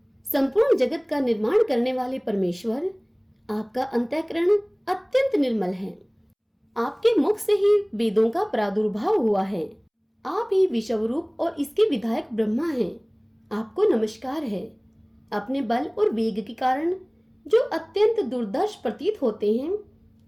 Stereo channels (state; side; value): identical; both; correlation 1.00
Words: संपूर्ण जगत का निर्माण करने वाले परमेश्वर, आपका अंतःकरण अत्यंत निर्मल है। आपके मुख से ही वेदों का प्रादुर्भाव हुआ है। आप ही विश्वरूप और इसके विधायक ब्रह्मा हैं। आपको नमस्कार है। अपने बल और वेग के कारण जो अत्यंत दुर्दर्श प्रतीत होते हैं,